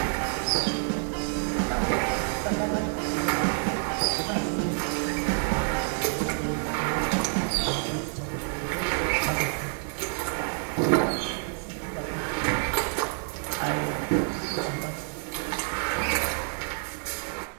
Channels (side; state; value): left; silent; 59 dB below the other